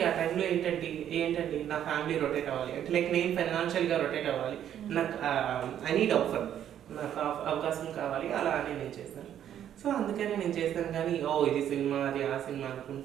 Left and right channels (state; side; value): quieter; left; 10.3 dB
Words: ఆ టైంలో ఏంటండి నా ఫ్యామిలీ రొటేట్ అవ్వాలి అంటే లైక్ నేను ఫైనాన్షియల్గా రొటేట్ అవ్వాలి, నాకు ఐ నీడ్ ఆఫర్, నాకు అవకాశం కావాలి, అలా అని నేను చేశాను. సో అందుకని నేను చేశాను. కానీ ఇది సినిమా అది ఆ సినిమా